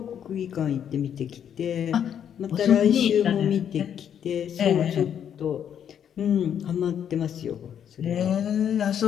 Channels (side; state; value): right; quieter; 8.9 dB